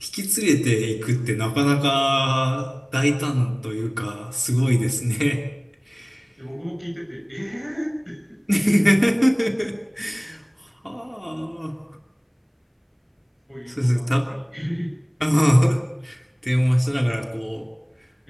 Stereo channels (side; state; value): both; identical; correlation 1.00